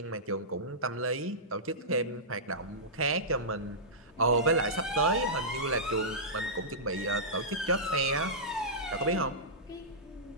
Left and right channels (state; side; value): normal; both; correlation -0.16